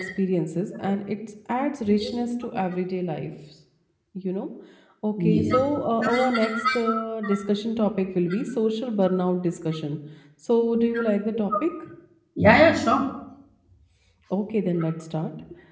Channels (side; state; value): both; identical; correlation 1.00